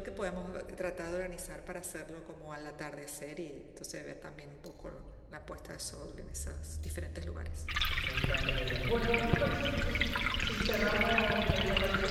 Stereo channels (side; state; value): both; identical; correlation 1.00